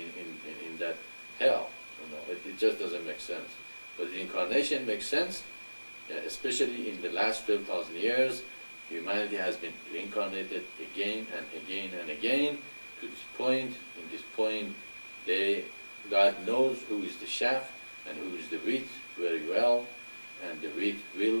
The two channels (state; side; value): inverted; both; correlation -1.00